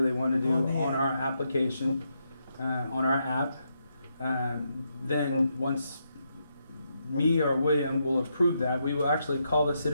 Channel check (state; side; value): inverted; both; correlation -0.81